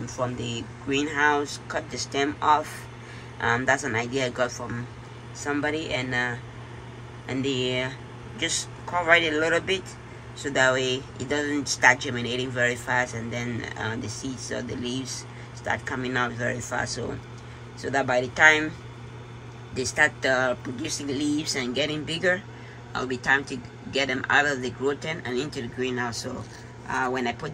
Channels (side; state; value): both; identical; correlation 1.00